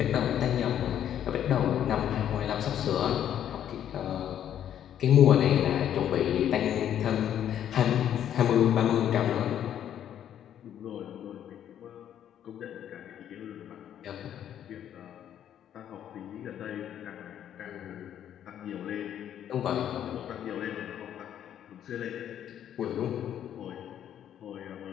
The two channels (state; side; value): quieter; right; 10.2 dB